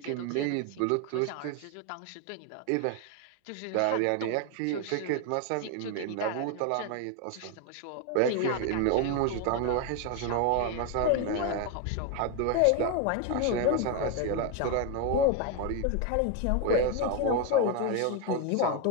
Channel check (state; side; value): different; both; correlation 0.01